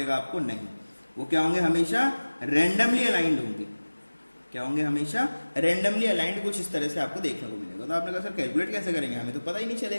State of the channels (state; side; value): inverted; both; correlation -1.00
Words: आपको, नहीं। वो क्या होंगे, हमेशा रेंडमली अलाइंड होंगे। क्या होंगे, हमेशा रेंडमली अलाइंड, कुछ इस तरह से आपको देखने को मिलेगा। तो आपने कहा सर कैलकुलेट कैसे करेंगे, हमें तो पता ही नहीं